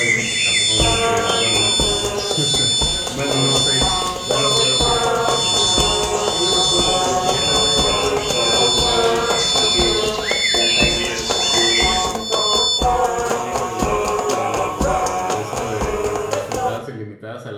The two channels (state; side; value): identical; both; correlation 1.00